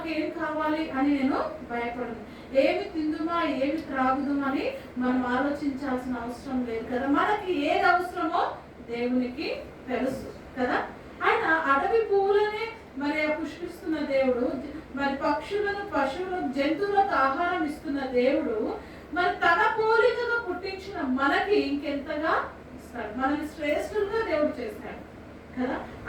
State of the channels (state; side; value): identical; both; correlation 1.00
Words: ఏం కావాలి అని నేను భయపడను. ఏమి తిందుమా ఏమి త్రాగుదుమా అని మనం ఆలోచించాల్సిన అవసరం లేదు కదా. మనకి ఏది అవసరమో దేవునికి తెలుసు కదా. ఆయన అడవి పువ్వులనే మరి పుష్పిస్తున్న దేవుడు, మరి పక్షులను పశువులకు జంతువులకు ఆహారం ఇస్తున్న దేవుడు మరి తన పోలికగా పుట్టించిన మనకి ఇంకెంతగా ఇస్తాడు. మనల్ని శ్రేష్ఠులుగా దేవుడు చేశాడు కదా.